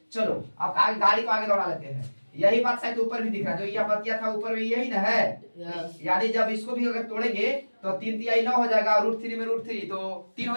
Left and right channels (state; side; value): inverted; both; correlation -1.00